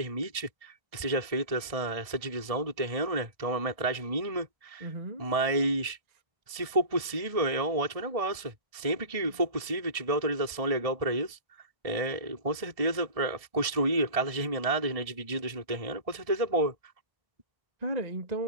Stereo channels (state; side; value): late; left; 1.7 ms